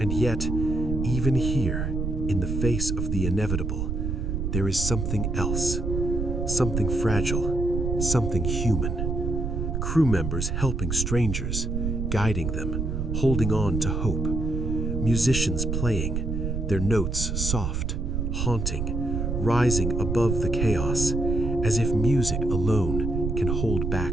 yet, even here, in the face of the inevitable, there is something else, something fragile, something human. Crew members helping strangers, guiding them, holding on to hope. Musicians playing, their notes soft, haunting, rising above the chaos, as if music alone can hold back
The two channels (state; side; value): noise; right; rumble, 1 dB below the sound